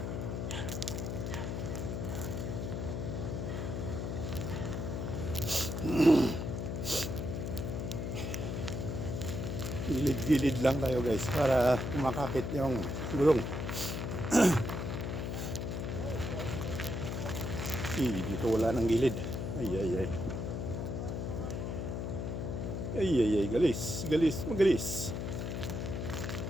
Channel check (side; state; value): left; noise; hum, 3 dB below the sound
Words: gilid-gilid lang tayo guys para kumakapit yung gulong. Dito wala nang gilid. Ay ay ay. Ay ay ay, galis, galis, magalis.